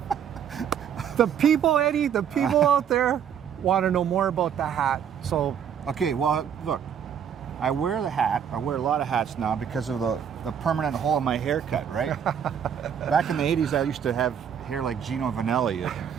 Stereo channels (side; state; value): left; quieter; 8.3 dB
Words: The people, Eddie, the people out there want to know more about the hat. So, okay, well, look, I wear the hat. I wear a lot of hats now because of the permanent hole in my haircut, right? Back in the 80s, I used to have hair like Gino Vanelli,